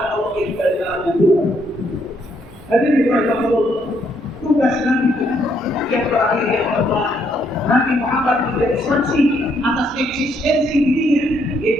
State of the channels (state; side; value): normal; both; correlation 0.72